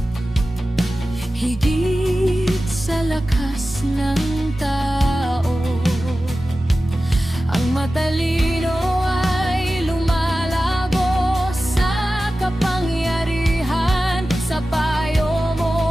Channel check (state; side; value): normal; both; correlation 0.95